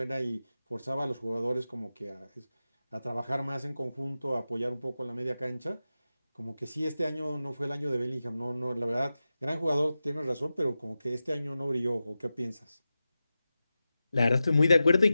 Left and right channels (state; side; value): inverted; both; correlation -0.93